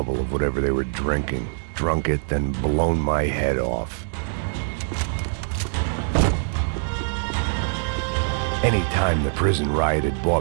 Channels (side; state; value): left; silent; digital silence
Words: of whatever they were drinking, drunk it, then blown my head off. Any time the prison riot had